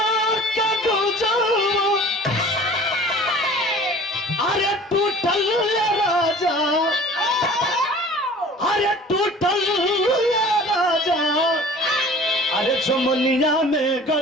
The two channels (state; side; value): normal; both; correlation 0.45